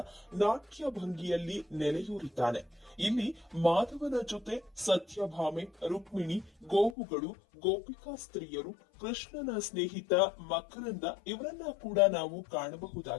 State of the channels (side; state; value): right; drops out; at 7.0 s